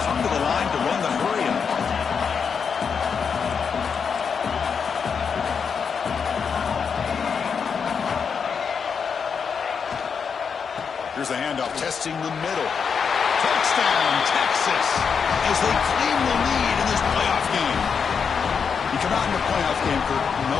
come to the line to run the hurry-up. Here's the handoff, testing the middle. Touchdown, Texas, as they claim the lead in this playoff game. You come out in the playoff game, Kirk,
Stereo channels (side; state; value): right; quieter; 6.3 dB